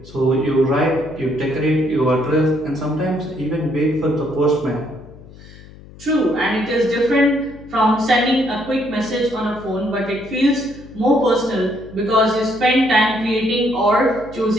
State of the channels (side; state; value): left; noise; hum, 20 dB below the sound